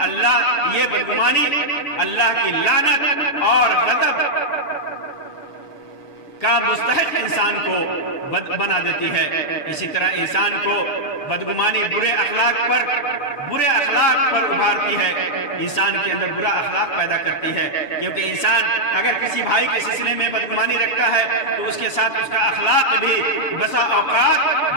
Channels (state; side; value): late; right; 6.9 ms